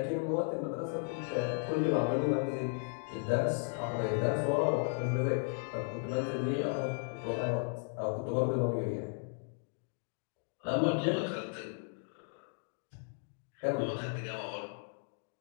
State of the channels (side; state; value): right; silent; 54 dB below the other